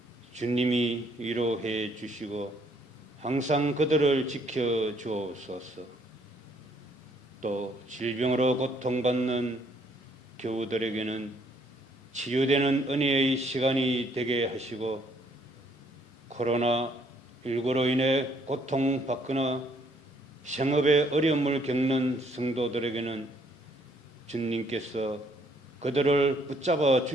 주님이 위로해 주시고 항상 그들을 지켜 주옵소서. 또 질병으로 고통받는 교우들에게는 치유되는 은혜의 시간이 되게 하시고 코로나19로 인해 고통받거나 생업에 어려움을 겪는 성도들에게는 주님께서 그들을 붙잡아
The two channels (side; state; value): both; normal; correlation 0.66